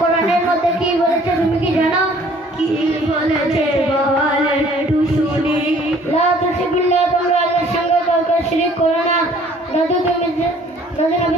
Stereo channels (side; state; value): both; normal; correlation 0.56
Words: মধ্যে কি বলেছে তুমি কি জানো? কি বলেছে বল একটু শুনি। লা তুশরিকুল্লাহ, তোমরা আল্লাহর সঙ্গে কাউকে শিরক করো না। দাদু